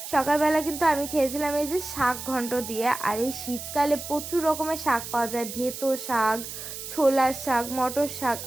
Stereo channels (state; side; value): noise; right; hiss, 9 dB below the sound